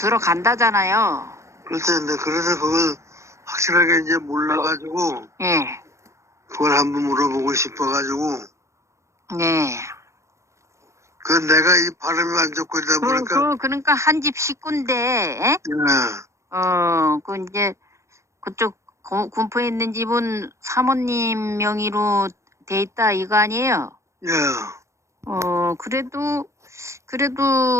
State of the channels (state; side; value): late; left; 0.14 ms